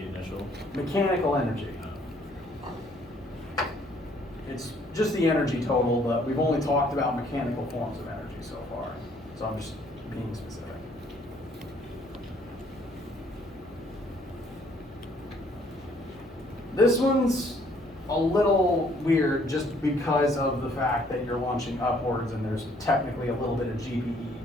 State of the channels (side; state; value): left; noise; hum, 25 dB below the sound